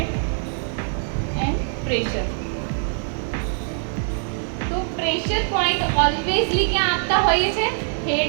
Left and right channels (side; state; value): left; silent; 56 dB below the other